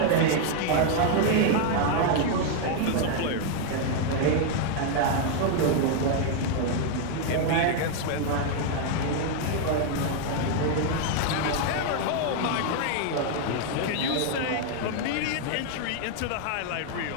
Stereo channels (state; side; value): different; both; correlation 0.00